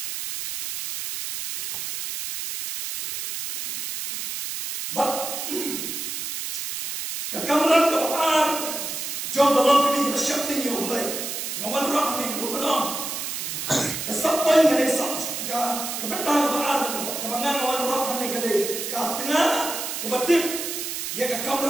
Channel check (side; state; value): right; noise; hiss, 4 dB below the sound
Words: Kekameran kebapaan jom dalam kami bersyuting yang boleh. Ngawan roh ni bukan kesapai yang ada sah. Kebetul kebapaan kebangan ngawan roh ni kali tengah kebetul. Ia